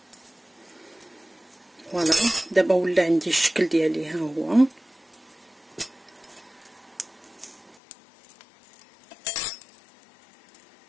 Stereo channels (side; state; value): right; drops out; at 7.8 s